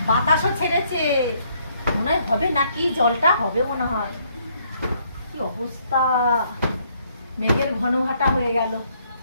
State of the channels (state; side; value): inverted; both; correlation -0.68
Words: বাতাসও ছেড়েছে, মনে হয় হবে নাকি, জলটা হবে মনে হয়। কি অবস্থা, মেঘের ঘন ঘাটা হয়ে গেল।